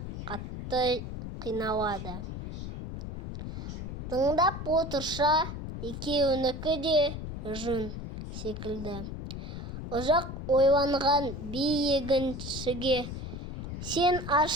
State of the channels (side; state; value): left; noise; rumble, 7 dB below the sound